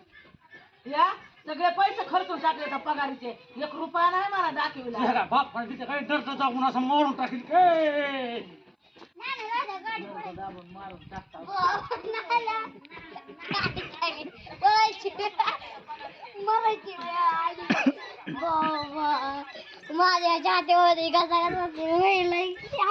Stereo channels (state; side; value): identical; both; correlation 1.00